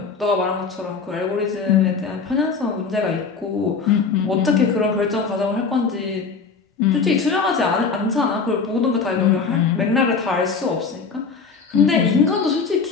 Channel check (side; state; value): right; quieter; 5.1 dB